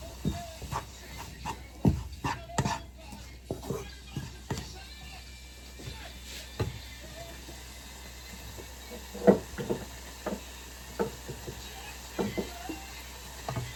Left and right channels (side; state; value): both; identical; correlation 1.00